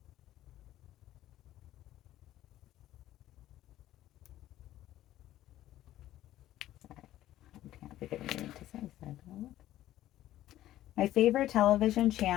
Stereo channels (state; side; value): quieter; right; 13.8 dB